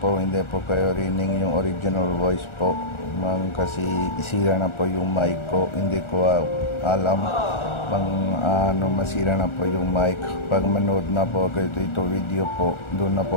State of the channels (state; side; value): late; right; 1.4 ms